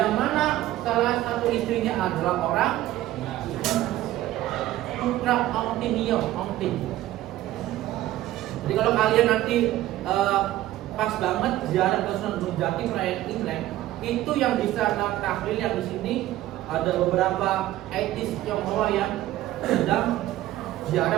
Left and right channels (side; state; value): left; quieter; 14.8 dB